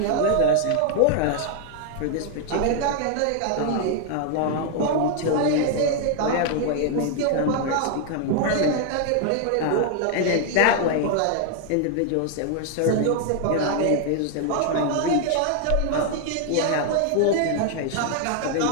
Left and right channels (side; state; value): both; different; correlation 0.00